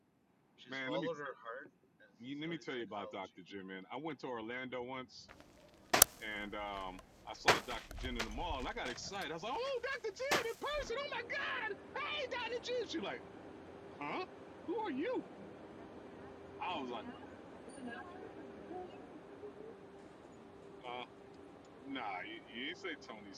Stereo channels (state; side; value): identical; both; correlation 1.00